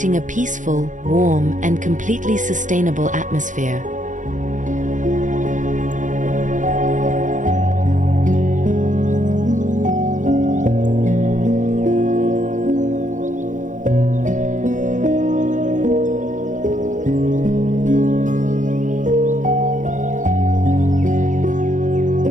a peaceful, warm, and completely sustainable atmosphere.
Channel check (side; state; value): left; late; 0.37 ms